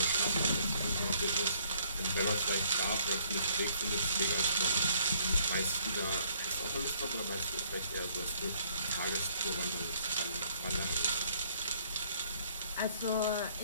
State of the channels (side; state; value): both; inverted; correlation -0.64